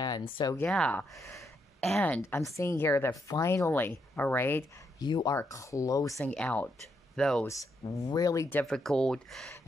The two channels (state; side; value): normal; both; correlation 0.79